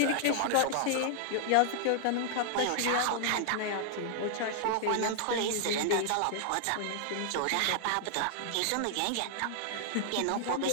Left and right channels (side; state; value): both; different; correlation -0.01